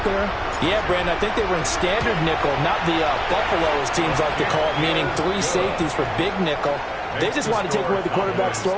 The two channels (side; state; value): both; identical; correlation 1.00